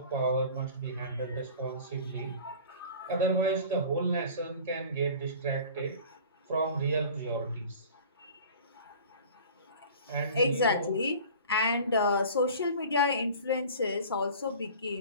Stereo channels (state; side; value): inverted; both; correlation -0.42